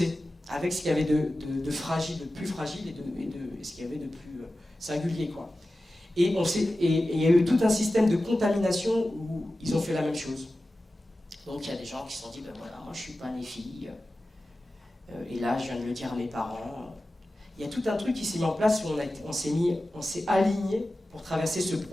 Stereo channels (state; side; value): normal; both; correlation 0.94